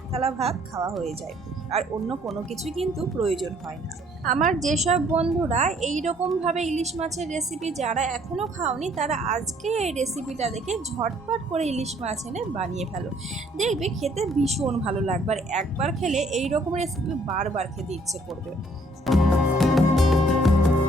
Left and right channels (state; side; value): normal; both; correlation 0.63